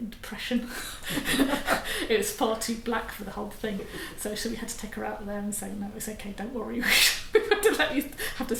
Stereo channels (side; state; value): both; identical; correlation 1.00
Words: depression." It was far too black for the whole thing. So we had to take her out of there and say, "No, it's okay. Don't worry. We have to let you have to